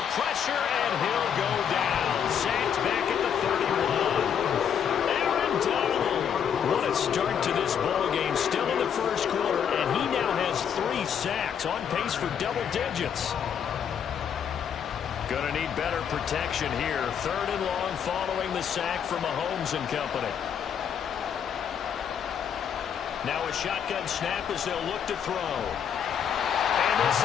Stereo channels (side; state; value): right; quieter; 8.1 dB